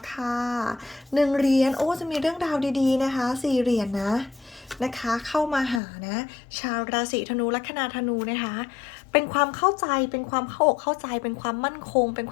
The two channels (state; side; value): drops out; right; at 5.8 s